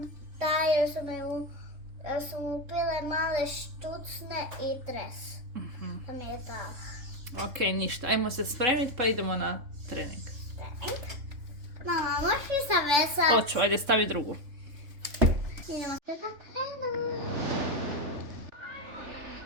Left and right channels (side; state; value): left; late; 3.5 ms